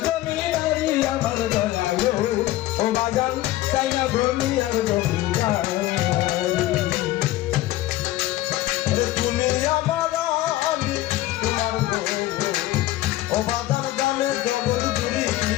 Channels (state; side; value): quieter; right; 16.0 dB